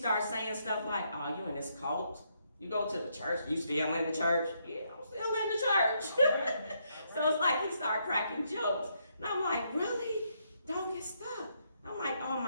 saying stuff like, oh, you in this cult? You go to the church, you still in the church? Yeah, I'm still in the church. So it's like he started cracking jokes. And I'm like, really? Don't get stuck. I'm like, oh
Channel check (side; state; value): both; inverted; correlation -0.75